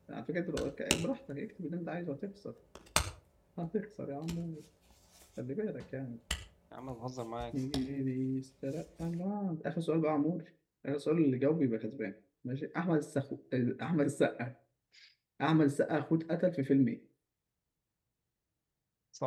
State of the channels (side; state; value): both; identical; correlation 1.00